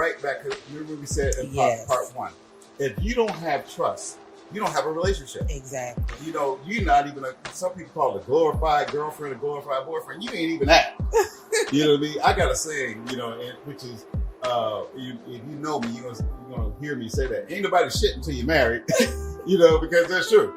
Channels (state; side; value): identical; both; correlation 1.00